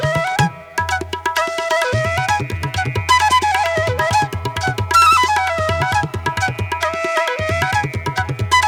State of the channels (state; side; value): identical; both; correlation 1.00